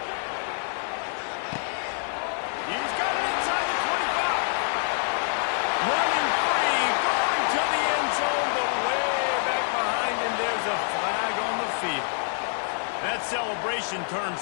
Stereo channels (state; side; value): silent; right; 61 dB below the other